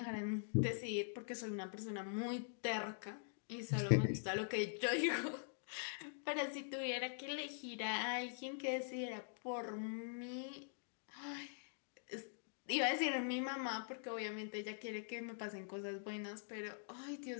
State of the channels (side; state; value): right; silent; digital silence